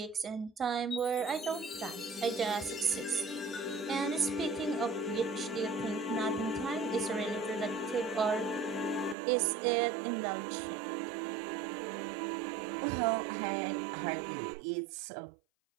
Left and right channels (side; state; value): left; drops out; at 9.2 s